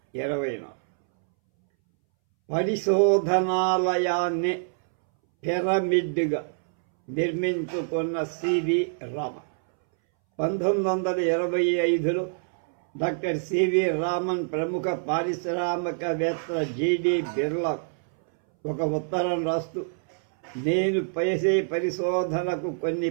పరిశోధనాలయాన్ని పిరమిడ్గా నిర్మించుకున్న సివి రామన్ 1925లో డాక్టర్ సివి రామన్ ప్రముఖ పారిశ్రామికవేత్త జిడి బిర్లా ఒక ఉత్తరం రాస్తూ, నేను చేసే పరిశోధనకు కొన్ని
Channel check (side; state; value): left; silent; 61 dB below the other